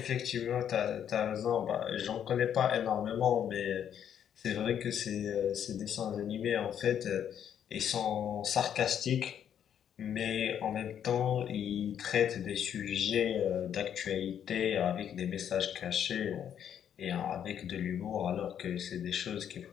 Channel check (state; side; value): quieter; right; 9.2 dB